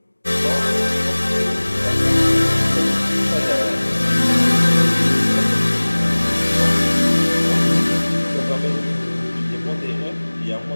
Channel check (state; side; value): inverted; both; correlation -1.00